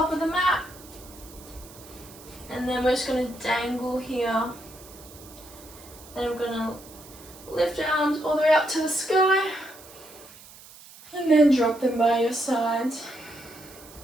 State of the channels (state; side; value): noise; right; hiss, 20 dB below the sound